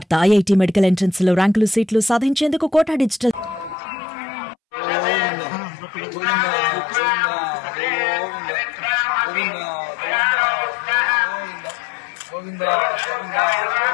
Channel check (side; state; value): right; drops out; at 3.8 s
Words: IIT medical entrance లో ర్యాంకులు సీట్లు సాధించేందుకు కోటా డిజిటల్ గోవిందా గోవిందా